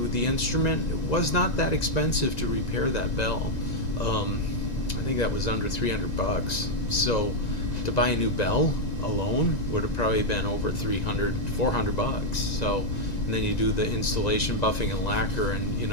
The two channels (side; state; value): right; late; 1.9 ms